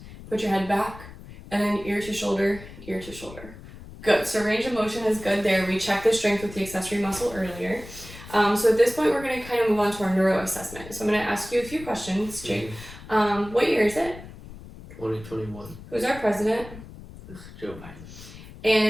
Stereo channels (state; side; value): noise; left; rumble, 16 dB below the sound